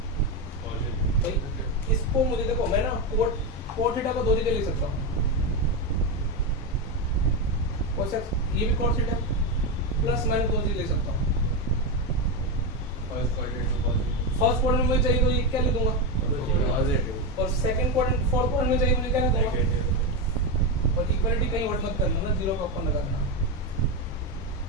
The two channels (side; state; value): both; normal; correlation 0.11